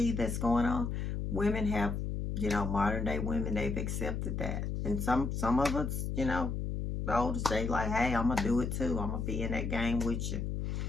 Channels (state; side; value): noise; left; hum, 2 dB below the sound